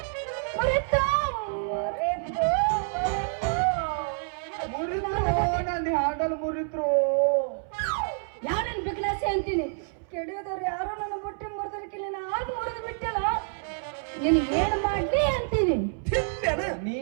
ನನ್ನ ಹಾಡಲ್ ಮುರಿದ್ರು ಯಾರನ್ನ ಬಿಗ್ಲಾಸೆ ಅಂತೀನಿ ಕೆಡಿಯೋದವ್ರು ಯಾರು ನನ್ನ ಬುಟ್ಟಿ ಮುರಿದ್ರಕ್ಕಿಲ್ಲ ಆಗ ಮುರಿದು ಬಿಟ್ಟಲ್ಲ ನೀನು ಏನ್ ಮಾಡ್ಲಿ ಅಂತೀನಿ ನೀ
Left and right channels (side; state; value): left; silent; 60 dB below the other